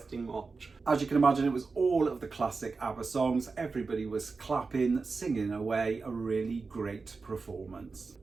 watch. As you can imagine, it was all of the classic Abba songs. Everybody was clapping, singing away. A really great performance.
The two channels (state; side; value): quieter; left; 4.4 dB